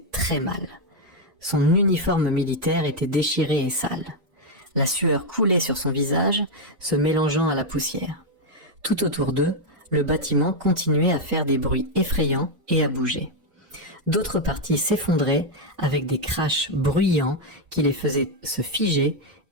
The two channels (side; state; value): left; late; 3.0 ms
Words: très mal. Son uniforme militaire était déchiré et sale. La sueur coulait sur son visage, se mélangeant à la poussière. Tout autour d'eux, le bâtiment continuait à faire des bruits effrayants et à bouger. D'autres parties s'effondraient avec des crashs bruyants qui les faisaient se figer